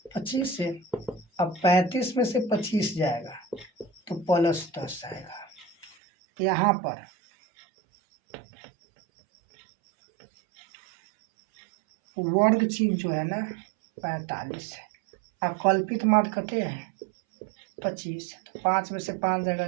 25 से। अब 35 में से 25 जाएगा तो +10 आएगा। यहाँ पर वर्ग चिन्ह जो है ना 45 है, अब कल्पित माध्य कहते हैं 25, तो 5 में से 5 जाएगा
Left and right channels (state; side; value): drops out; left; at 6.0 s